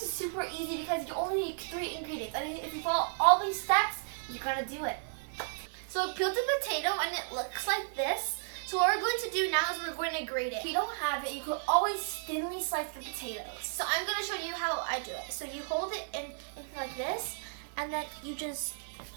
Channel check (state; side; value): silent; left; 55 dB below the other